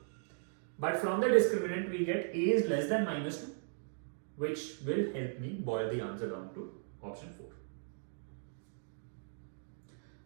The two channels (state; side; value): silent; left; digital silence